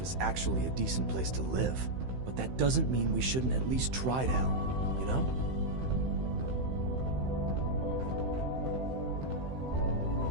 actually a decent place to live. But that doesn't mean we shouldn't at least try to help, you know?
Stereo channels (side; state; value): left; late; 15 ms